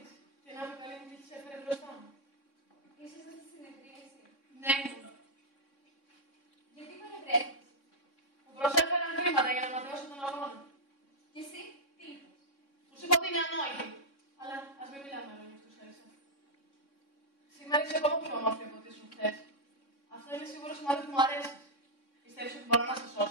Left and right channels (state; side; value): late; right; 3.6 ms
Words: Και να με καλή μου τύχη σε έφερε μπροστά μου. Ήσασταν στη συνεδρίαση. Ναι, μου. Γιατί παρευρέθηκες? Μου προσέφεραν χρήματα για να ματαιώσω τον αγώνα. Και εσύ, τι είπες? Τους είπα ότι είναι ανόητη. Αλλά ας μην μιλάμε λόγια αυτούς, Έλισσα. Σήμερα είσαι ακόμα πιο όμορφη από ό,τι ήσουν χθες. Αυτό είναι σίγουρο σημάδι που μου αρέσει. Πιστεύεις ότι μπορώ να σε